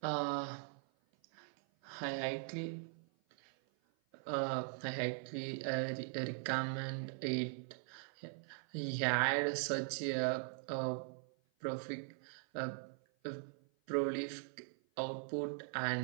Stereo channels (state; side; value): silent; left; 50 dB below the other